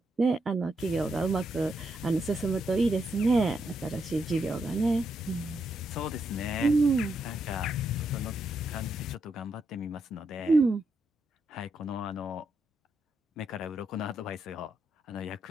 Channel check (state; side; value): normal; both; correlation 0.81